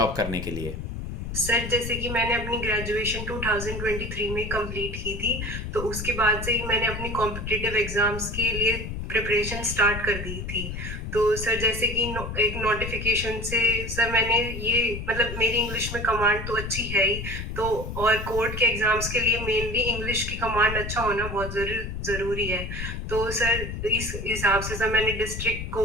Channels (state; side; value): noise; left; rumble, 6 dB below the sound